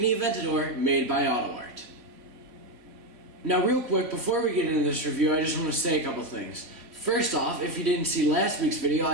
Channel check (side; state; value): left; late; 3.1 ms